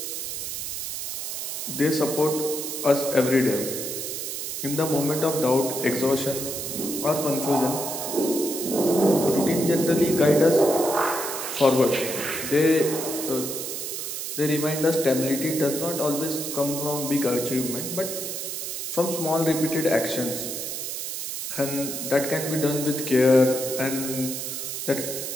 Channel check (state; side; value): noise; right; hiss, 5 dB below the sound